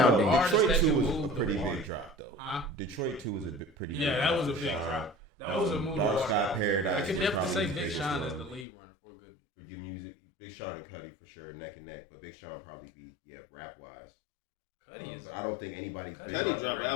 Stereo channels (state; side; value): drops out; right; at 8.7 s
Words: Detroit Artists 2 that was can a move pretty the big water. drop, though. Huh? Detroit 2 was a pretty big Yeah, drop. that was a for big Sean. drop. That was a move. Dark Sky Paradise I was can definitely probably say his Big biggest Sean is the one. lead run for good. For your music, Big Sean and Cudi for sure, neck and neck. But Big Sean probably be, rap wise. But I don't think anybody's bigger. Cudi drop an